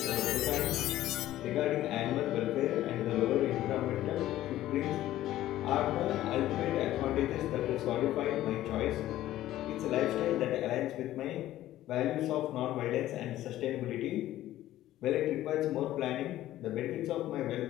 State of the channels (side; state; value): right; quieter; 14.2 dB